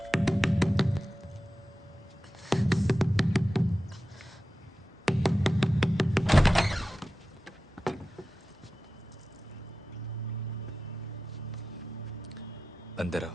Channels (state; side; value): normal; both; correlation 0.94